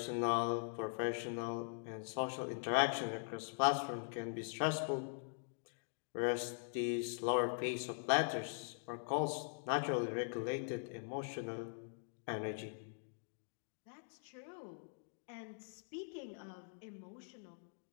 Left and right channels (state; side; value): silent; right; digital silence